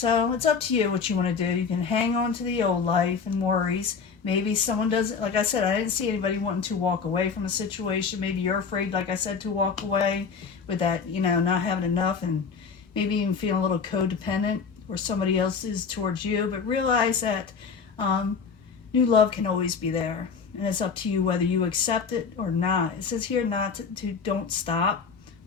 it's up to you what you want to do. You can hang on to the old life and worries. Maybe someone doesn't, like I said, I didn't see anybody wanting to walk away from a situation. Maybe you're afraid, like I said, to walk away with that, not having enough and maybe even feeling a little codependent where somebody else is towards you. But realize that new love can always be there. And it's up to you whether you accept it or not. It says here not to don't stop.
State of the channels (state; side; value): quieter; right; 5.7 dB